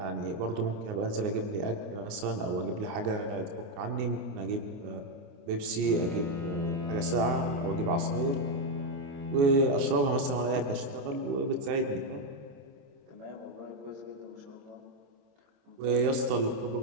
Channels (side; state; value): left; late; 29 ms